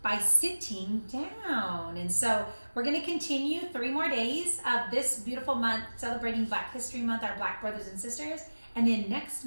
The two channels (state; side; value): inverted; both; correlation -1.00